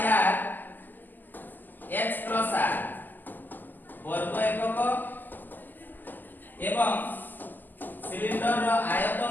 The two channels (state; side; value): late; right; 0.090 ms